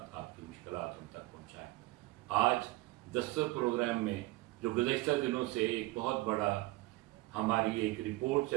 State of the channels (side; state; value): left; quieter; 20.2 dB